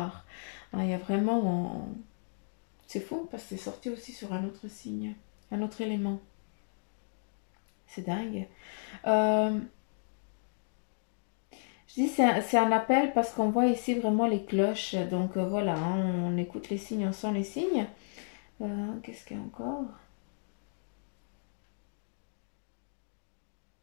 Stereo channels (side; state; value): right; silent; digital silence